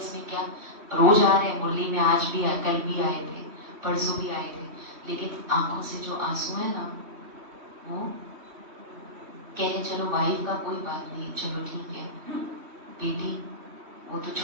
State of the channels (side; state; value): left; late; 3.1 ms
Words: क्या। रोज आ रहे हैं मुरली में, आज भी आए, कल भी आए थे, परसों भी आए थे, लेकिन आंखों से जो आंसू है ना, वो कहे चलो वाइफ का कोई बात नहीं, चलो ठीक है, बेटी वो तो